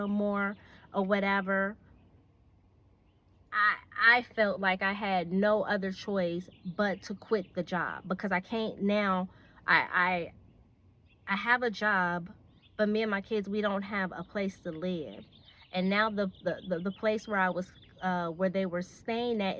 more, or whatever. I felt like I had no other choice but to quit the job, because I can't now. I I have a job, but me and my kids, we don't have a place to live. And now the place where I was where they were staying at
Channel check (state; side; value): identical; both; correlation 1.00